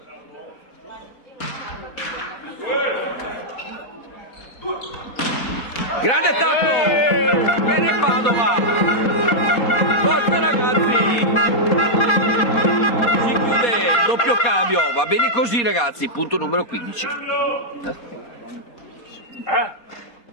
Grande attacco! Chiene Padova! Forza ragazzi! Si chiude il doppio cambio, va bene così ragazzi, punto numero 15.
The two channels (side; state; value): right; late; 4.2 ms